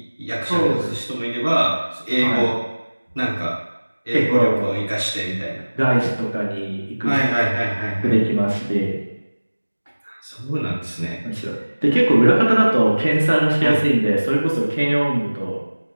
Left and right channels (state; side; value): inverted; both; correlation -1.00